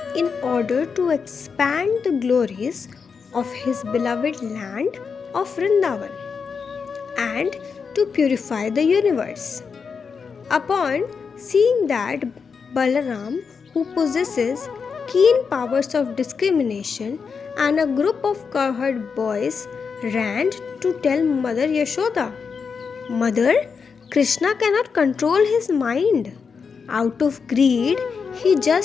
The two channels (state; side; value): quieter; right; 5.7 dB